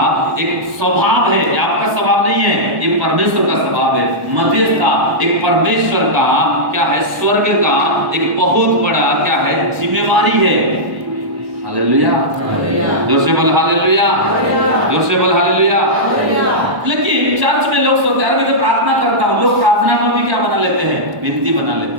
एक स्वभाव है। आपका स्वभाव नहीं है, ये परमेश्वर का स्वभाव है। मध्यस्थता एक परमेश्वर का क्या है? स्वर्ग का एक बहुत बड़ा क्या है? जिम्मेवारी है। हालेलुया, जोर से बोल हालेलुया, जोर से बोल हालेलुया। लेकिन चर्च में लोग सोचते हैं, मैं तो प्रार्थना करता हूँ, लोग प्रार्थना को भी क्या बना लेते हैं? विनती बना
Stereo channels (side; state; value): left; late; 1.1 ms